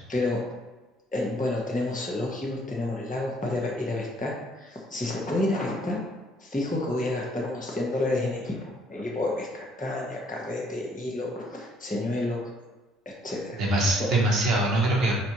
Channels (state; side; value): normal; both; correlation 0.64